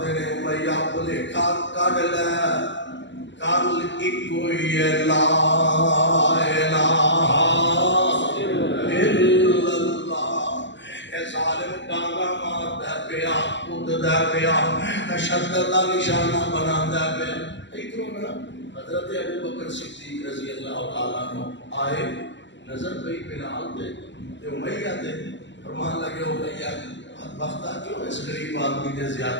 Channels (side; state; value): right; late; 0.53 ms